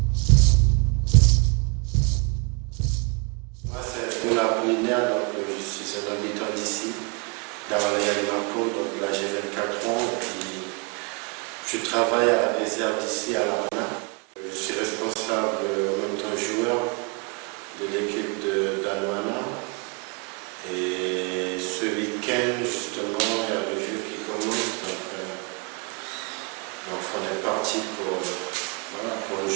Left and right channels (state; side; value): quieter; left; 32.8 dB